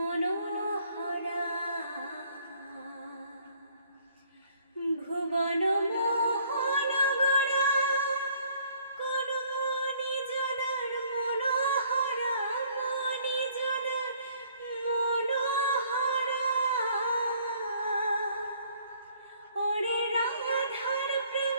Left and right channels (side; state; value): both; inverted; correlation -0.61